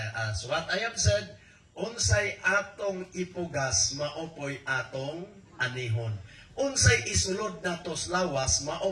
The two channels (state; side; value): identical; both; correlation 1.00